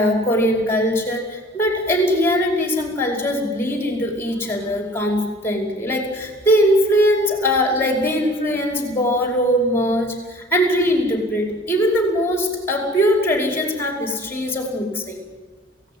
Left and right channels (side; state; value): both; normal; correlation 0.48